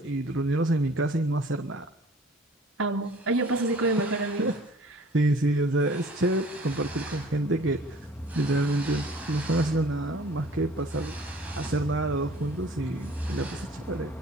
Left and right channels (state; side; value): normal; both; correlation 0.51